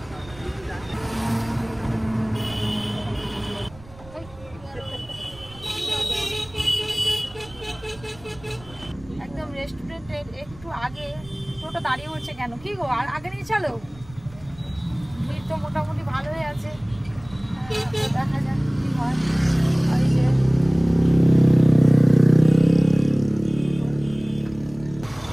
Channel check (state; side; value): noise; right; rumble, 21 dB below the sound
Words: একদম রেস্টুরেন্টের একটু আগে টোটো দাঁড়িয়ে পড়ছে কেন? কি গো, আর আগে নিয়ে চলো। ভিড় তো মোটামুটি ভালোই আছে, দেখা যাক কি হয়। ওই যে